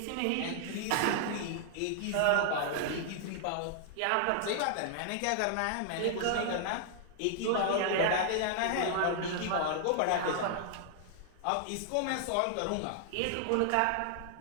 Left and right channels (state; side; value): different; both; correlation -0.01